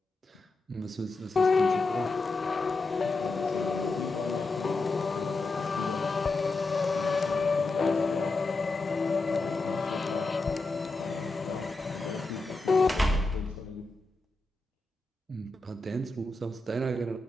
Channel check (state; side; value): quieter; right; 3.3 dB